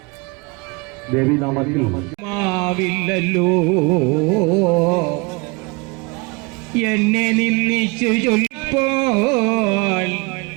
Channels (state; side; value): quieter; left; 27.7 dB